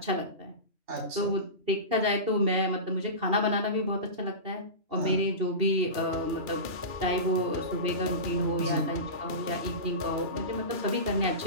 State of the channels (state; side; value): late; left; 2.8 ms